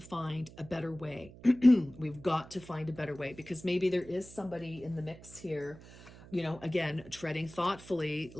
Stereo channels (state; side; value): noise; right; hum, 19 dB below the sound